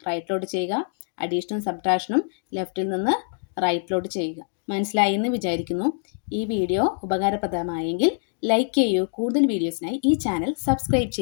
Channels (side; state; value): right; silent; digital silence